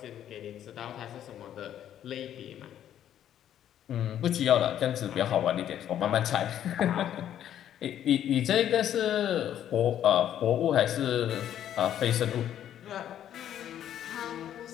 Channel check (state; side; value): quieter; right; 10.7 dB